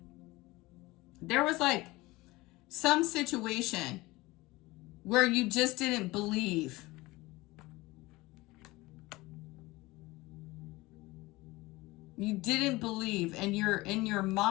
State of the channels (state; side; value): quieter; right; 20.7 dB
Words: there was like some situation where you just didn't believe. You didn't believe, and you're in your